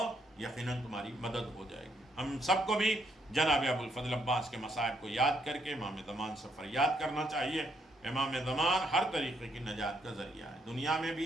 یقیناً تمہاری مدد ہو جائے گی۔ ہم سب کو بھی جناب ابو الفضل عباس کے مصائب کو یاد کر کے امام زمان سے فریاد کرنا چاہیے۔ امام زمان ہر طریقے کی نجات کا ذریعہ ہے، دنیا میں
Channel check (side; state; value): both; normal; correlation 0.73